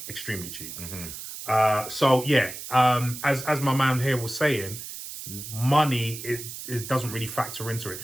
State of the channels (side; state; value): right; noise; hiss, 10 dB below the sound